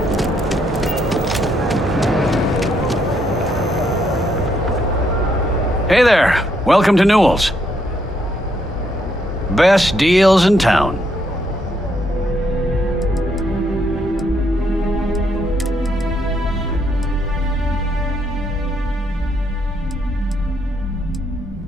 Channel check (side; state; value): both; normal; correlation 0.74